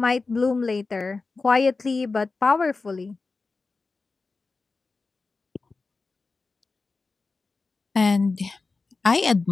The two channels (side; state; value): right; quieter; 3.9 dB